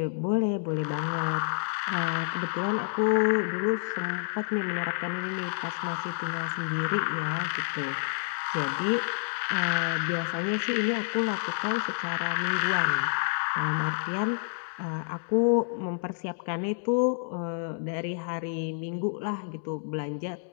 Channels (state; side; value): silent; right; digital silence